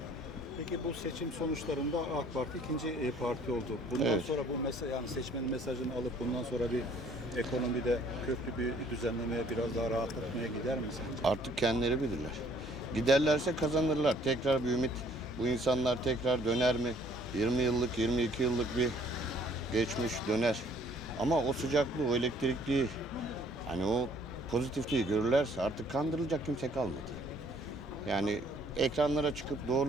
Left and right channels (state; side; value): normal; both; correlation 0.59